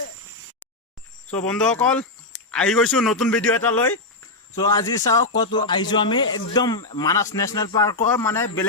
বন্ধুসকল আহি গৈছো নতুন ভিডিঅ' এটা লৈ। সো আজি চাওক কত আহিছো আমি একদম মানাস ন্যাশনাল পাৰ্কৰ মানে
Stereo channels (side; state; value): right; quieter; 3.0 dB